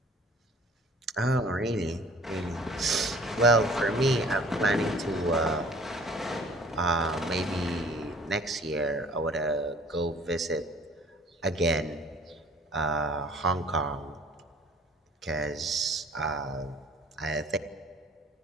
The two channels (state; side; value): normal; both; correlation 0.50